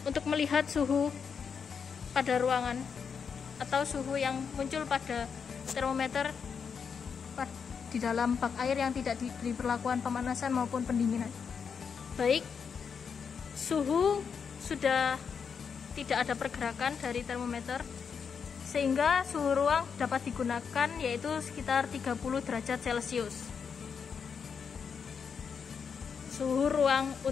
untuk melihat suhu pada ruangan atau suhu yang muncul pada termometer di dalam bak air yang tidak diberi perlakuan pemanasan maupun pendinginan. Baik, suhu sudah tidak ada pergerakan dari termometer, sehingga suhu ruang dapat digunakan, yaitu sekitar 30 derajat Celcius. Suhu ruang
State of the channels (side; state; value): right; quieter; 6.4 dB